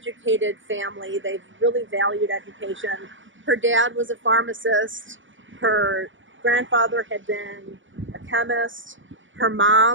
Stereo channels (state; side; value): late; left; 0.56 ms